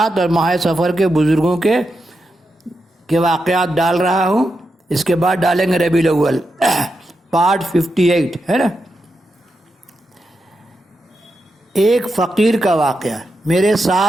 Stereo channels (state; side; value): normal; both; correlation 0.86